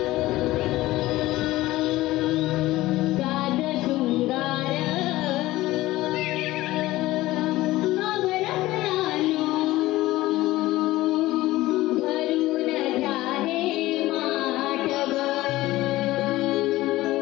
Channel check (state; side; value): quieter; right; 17.3 dB